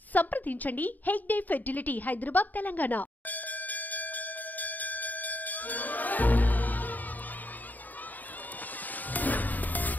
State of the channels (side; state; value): right; late; 0.084 ms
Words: సంప్రదించండి హెగ్డే ఫెర్టిలిటీ, హైదరాబాద్, తెలంగాణ.